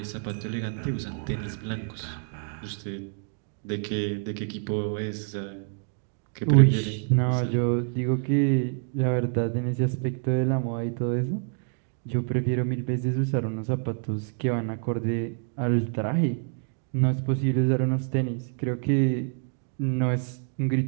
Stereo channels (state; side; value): silent; left; 58 dB below the other